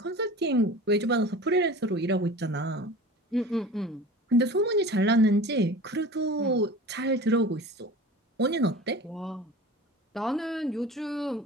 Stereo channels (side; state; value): both; normal; correlation 0.38